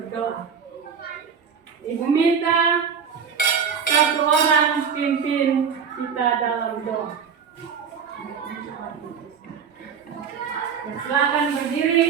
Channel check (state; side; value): quieter; left; 6.8 dB